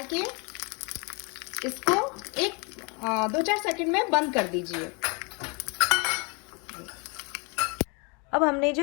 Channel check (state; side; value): quieter; right; 32.2 dB